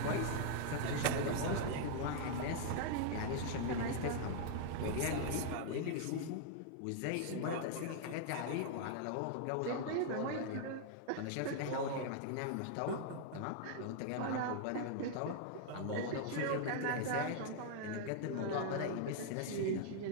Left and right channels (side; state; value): both; different; correlation -0.01